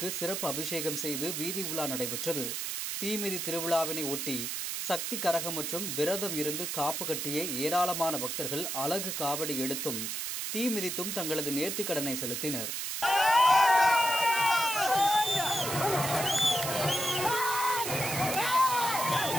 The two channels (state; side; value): noise; right; hiss, 3 dB below the sound